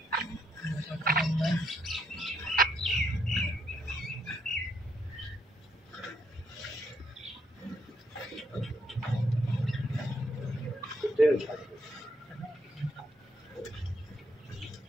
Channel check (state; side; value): normal; both; correlation 0.75